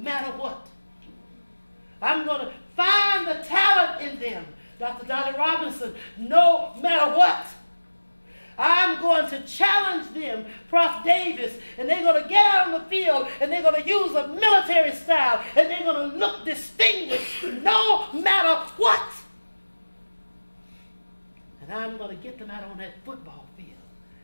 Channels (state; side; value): inverted; both; correlation -1.00